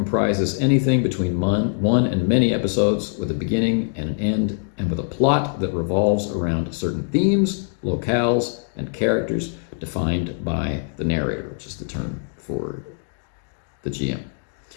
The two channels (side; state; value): right; silent; digital silence